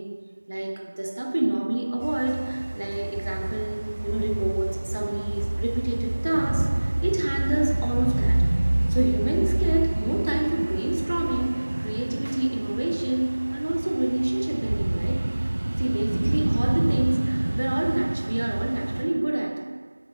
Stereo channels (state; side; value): inverted; both; correlation -1.00